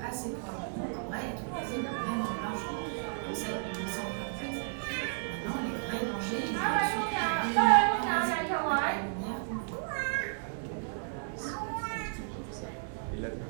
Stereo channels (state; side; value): silent; left; digital silence